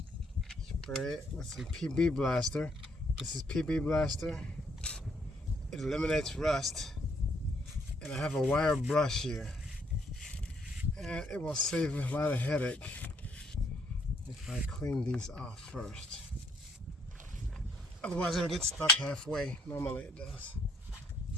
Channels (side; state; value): both; normal; correlation 0.69